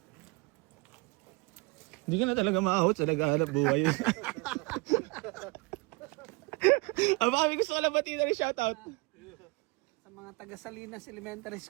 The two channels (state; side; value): quieter; left; 26.8 dB